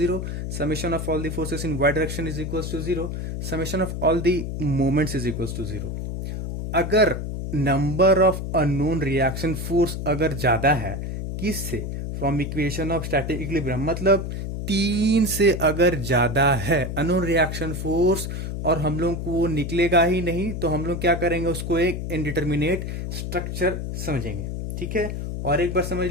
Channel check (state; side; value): noise; left; hum, 4 dB below the sound